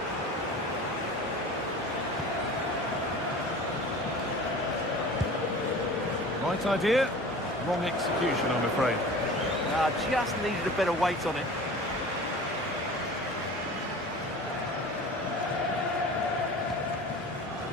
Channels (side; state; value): both; normal; correlation 0.39